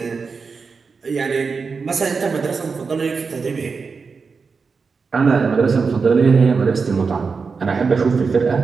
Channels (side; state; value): left; quieter; 5.0 dB